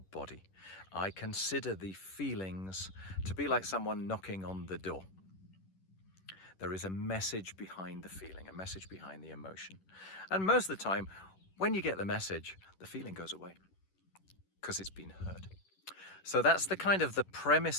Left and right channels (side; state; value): right; late; 11 ms